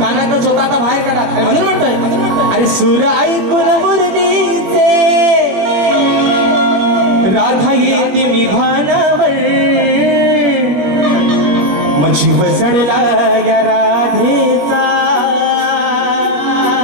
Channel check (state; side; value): late; left; 21 ms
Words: चोता आता बाहेर काढा म्हणून म्हणतोय अरे सूर ऐकून मुरलीचे राधा येते मी भानावर मग जीव चढला या राधेचा